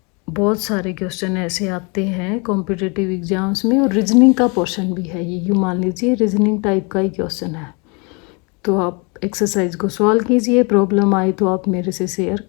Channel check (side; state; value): right; quieter; 31.5 dB